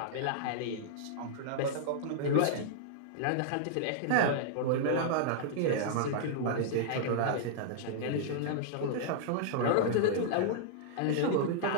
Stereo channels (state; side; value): different; both; correlation -0.01